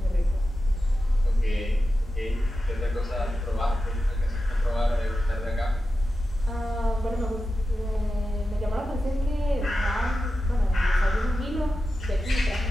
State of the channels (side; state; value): both; normal; correlation 0.92